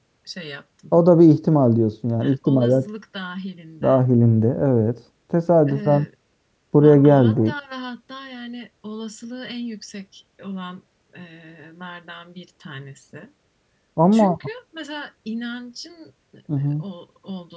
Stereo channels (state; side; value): identical; both; correlation 1.00